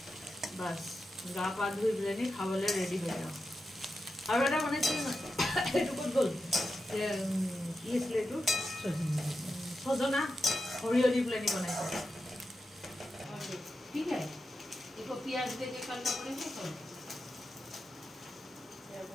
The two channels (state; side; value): normal; both; correlation 0.89